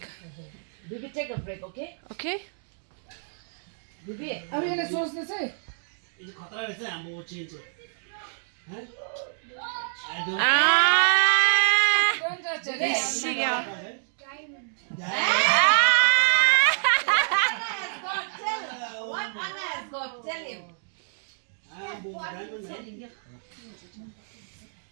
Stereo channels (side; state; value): left; silent; digital silence